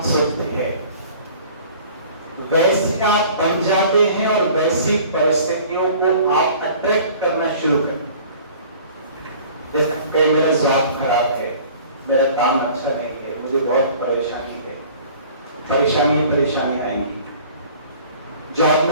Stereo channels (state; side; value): inverted; both; correlation -0.48